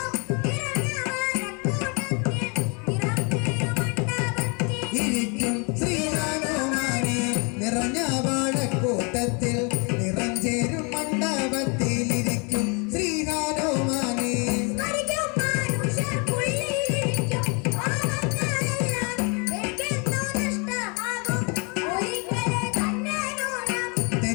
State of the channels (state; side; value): quieter; right; 33.0 dB